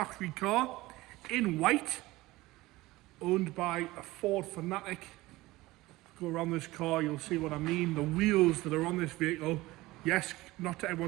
car in white, owned by a Ford fanatic. Go around this car, you'll see what I mean. The wheels that are on this vehicle, yes, not to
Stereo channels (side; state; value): left; quieter; 19.2 dB